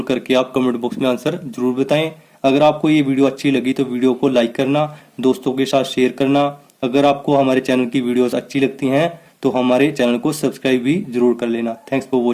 करके आप कमेंट बॉक्स में आंसर जरूर बताएं। अगर आपको ये वीडियो अच्छी लगी तो वीडियो को लाइक करना, दोस्तों के साथ शेयर करना। अगर आपको हमारे चैनल की वीडियोस अच्छी लगती हैं तो हमारे चैनल को सब्सक्राइब भी जरूर कर लेना। Thanks for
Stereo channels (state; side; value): identical; both; correlation 1.00